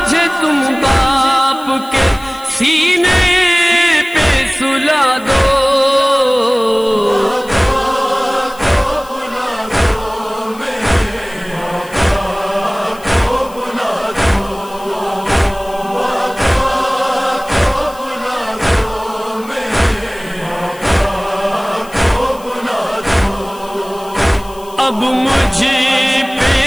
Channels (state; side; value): noise; left; hiss, 22 dB below the sound